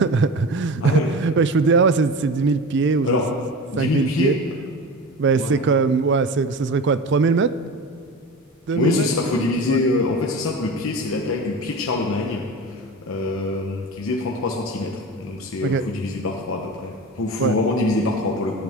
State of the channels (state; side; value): normal; both; correlation 0.31